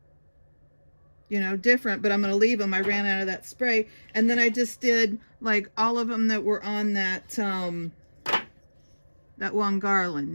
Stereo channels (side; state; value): both; inverted; correlation -1.00